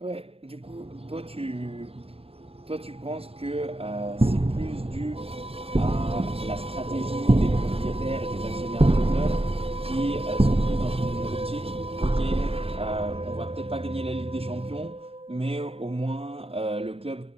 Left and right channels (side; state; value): left; late; 0.28 ms